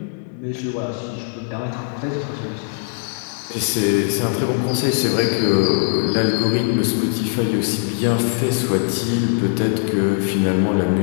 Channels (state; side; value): silent; right; digital silence